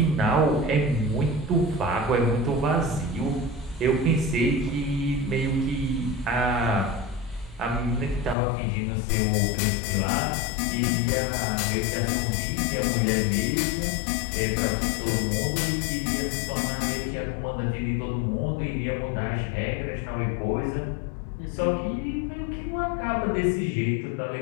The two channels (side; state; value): right; drops out; at 8.3 s